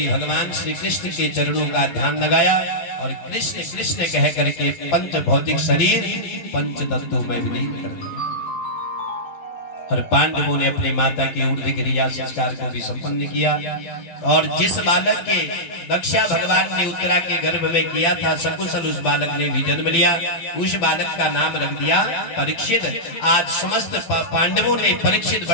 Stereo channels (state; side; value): late; right; 12 ms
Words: भगवान श्री कृष्ण के चरणों का ध्यान लगाया और कृष्ण कृष्ण कह करके 5 भौतिक शरीर 5 तत्वों में विलीन कर दिया। और पांडवों ने अपनी माता के ऊर्ध्व क्रिया संस्कार को भी संपन्न किया। और जिस बालक के रक्षा भगवान ने उत्तरा के गर्भ में किया था, सकुशल उस बालक ने भी जन्म लिया। उस बालक का नाम रख दिया परीक्षित। आज समस्त पांडवों ने परीक्षित